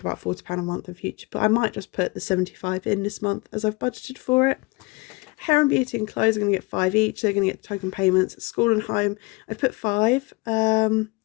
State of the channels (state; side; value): quieter; right; 25.5 dB